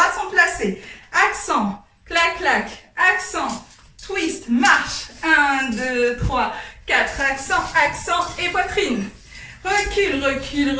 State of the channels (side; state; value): both; identical; correlation 1.00